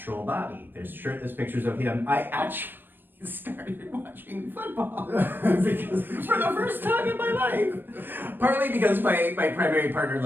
body. There's shirtless pictures of him. I actually started watching football because for the first time in my life. Partly because my primary partner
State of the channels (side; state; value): left; late; 0.095 ms